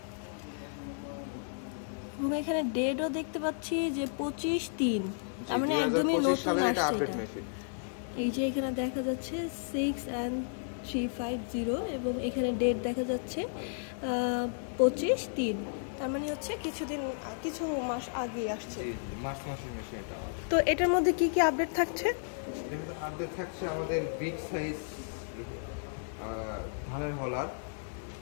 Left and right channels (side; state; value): right; silent; digital silence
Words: এবং এখানে ডেটও দেখতে পাচ্ছি যে 25/3, তার মানে একদমই নতুন আসছে এটা। এই যে এখানে দেখা যাচ্ছে 6N350 এবং এখানে ডেট দেখা যাচ্ছে 25/3, তার মানে হচ্ছে কিছু মাস আগে আসছে। মাসের মেশিন এটা। তো এটার মধ্যে কি কি আপডেট থাকছে? আপডেট থাকছে আমাদের বিগ সাইজ ধানের হলার,